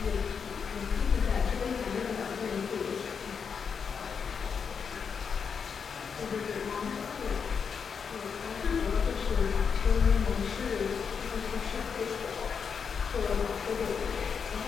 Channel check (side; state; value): right; quieter; 6.3 dB